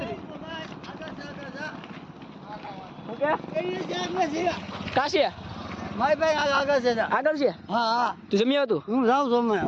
કાશી મારી ભાઈ આગળ છે. આગળ છે. હા હા, તું જમી આવતું? હું જાઉં છું.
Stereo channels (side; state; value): both; identical; correlation 1.00